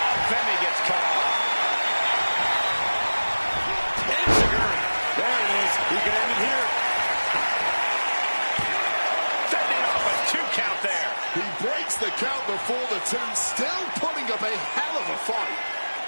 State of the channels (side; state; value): both; inverted; correlation -1.00